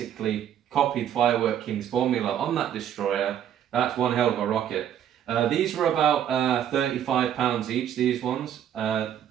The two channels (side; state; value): left; quieter; 10.0 dB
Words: copied Firework King's formula on that destroyer, that's one hell of a rocket. These were about £35 each, these ones.